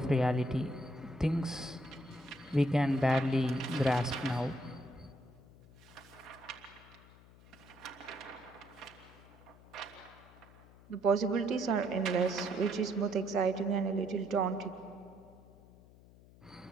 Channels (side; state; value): left; noise; hum, 23 dB below the sound